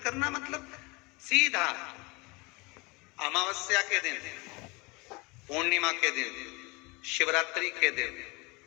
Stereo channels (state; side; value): quieter; right; 26.2 dB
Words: करना मतलब सीधा अमावस्या के दिन, पूर्णिमा के दिन, शिवरात्रि के दिन,